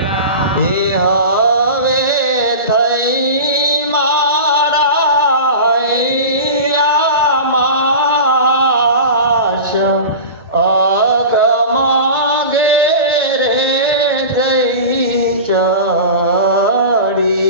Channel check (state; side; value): inverted; both; correlation -0.32